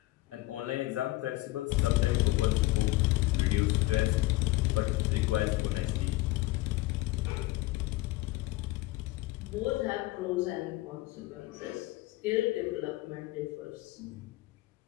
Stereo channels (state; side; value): quieter; right; 18.8 dB